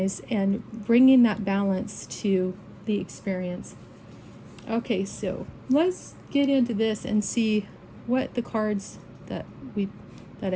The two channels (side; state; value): both; identical; correlation 1.00